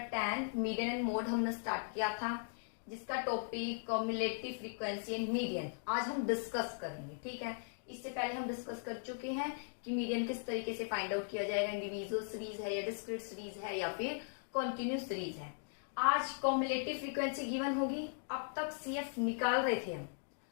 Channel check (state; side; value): silent; right; digital silence